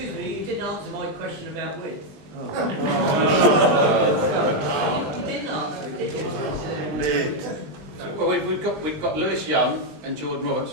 me, you didn't answer my question about width. You didn't answer it, did you? Well, we've got Lewis Young and Jordan Roberts,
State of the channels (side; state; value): left; late; 19 ms